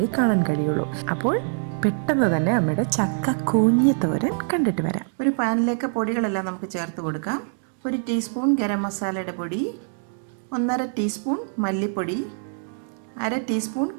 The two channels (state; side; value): silent; left; digital silence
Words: കാണാൻ കഴിയുള്ളൂ. അപ്പോൾ പെട്ടെന്ന് തന്നെ അമ്മയുടെ ചക്ക കൂഞ്ഞ് തോരൻ കണ്ടിട്ട് വരാം. ഒരു പാനിലേക്ക് പൊടികളെല്ലാം നമുക്ക് ചേർത്ത് കൊടുക്കാം. 1 ടീസ്പൂൺ ഗരം മസാലയുടെ പൊടി, 1.5 ടീസ്പൂൺ മല്ലിപ്പൊടി, 1/2 ടീസ്പൂൺ